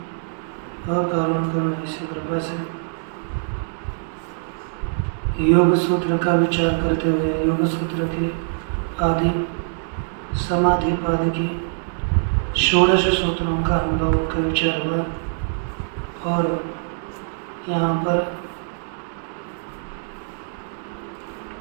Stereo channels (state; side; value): silent; left; digital silence